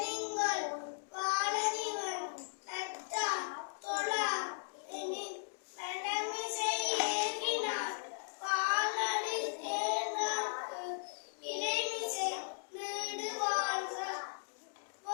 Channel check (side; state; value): right; silent; digital silence